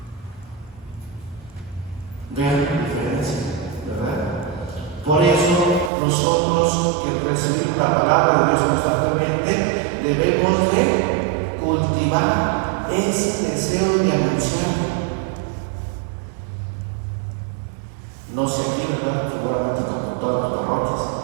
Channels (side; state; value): left; drops out; at 5.9 s